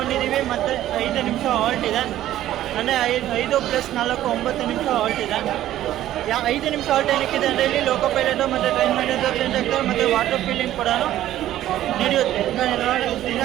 ಮತ್ತು 5 ನಿಮಿಷ ಹಾಲ್ಟ್ ಇದೆ, ಅಂದರೆ 5 + 4 9 ನಿಮಿಷ ಹಾಲ್ಟ್ ಇದೆ. 5 ನಿಮಿಷ ಹಾಲ್ಟ್ ಏನಕ್ಕಿದೆ ಅಂದರೆ ಇಲ್ಲಿ ಲೋಕೋ ಪೈಲಟು ಮತ್ತು ಟ್ರೈನ್ ಮ್ಯಾನೇಜರ್ ಚೇಂಜ್ ಆಗ್ತಾರೆ, ಮತ್ತು ವಾಟರ್ ಫಿಲ್ಲಿಂಗ್ ಕೂಡ ನಡೆಯುತ್ತೆ.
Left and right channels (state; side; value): quieter; left; 13.2 dB